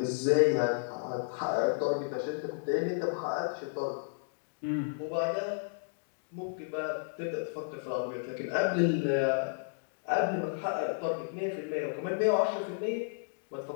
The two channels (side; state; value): right; silent; digital silence